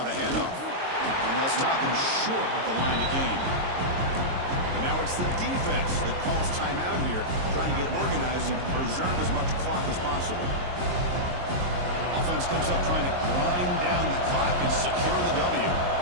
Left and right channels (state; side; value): late; left; 22 ms